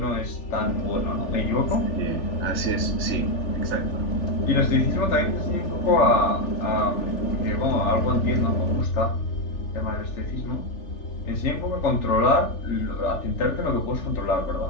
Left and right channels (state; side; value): late; right; 3.4 ms